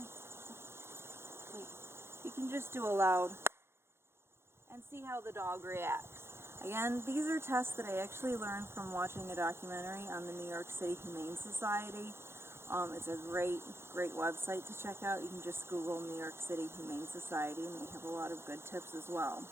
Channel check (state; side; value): late; left; 0.12 ms